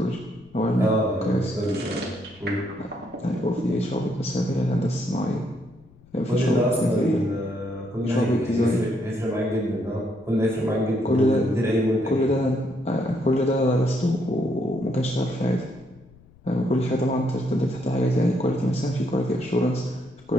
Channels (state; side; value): noise; left; rumble, 26 dB below the sound